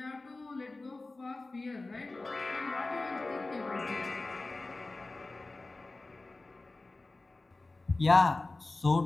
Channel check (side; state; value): right; quieter; 3.2 dB